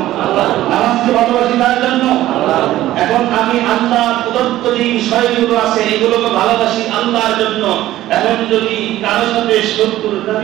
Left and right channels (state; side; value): quieter; left; 14.6 dB